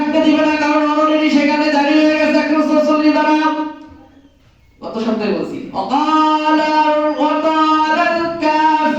দিবে না, কারণ অলরেডি সেখানে জারি হয়ে গেছে 140 দ্বারা। কত শব্দে বলছি, ওয়াকালাল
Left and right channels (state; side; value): identical; both; correlation 1.00